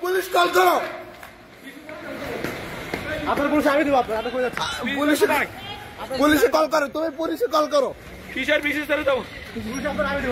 পুলিশ কল করো। আপনার পুলিশ আমি দেবো, আপনার পুলিশে কল করো, তুমি পুলিশে কল করো। কিসের বিশেষ করে দেবো পুলিশ আপনার আমি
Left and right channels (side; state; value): both; identical; correlation 1.00